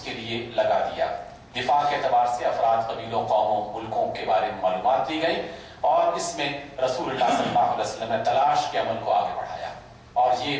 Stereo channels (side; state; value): both; identical; correlation 1.00